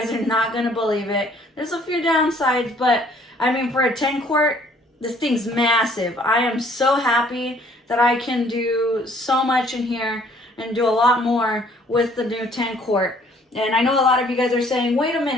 are not going to believe it. There's a few downsides, but I mean, for a 10 quart, this thing's massive. I am so happy that I can do so much in here and do a lot more with the new 10 quart. And I know a lot of you guys are saying, wait a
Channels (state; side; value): normal; both; correlation 0.59